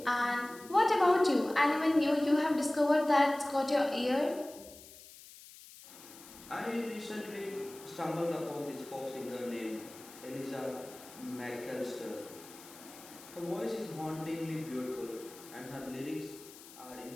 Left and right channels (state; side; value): noise; left; hiss, 18 dB below the sound